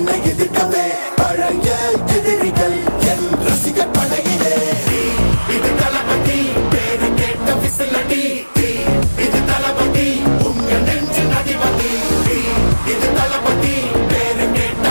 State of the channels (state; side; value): inverted; both; correlation -1.00